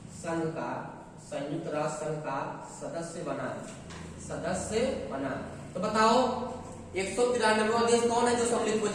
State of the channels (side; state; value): both; identical; correlation 1.00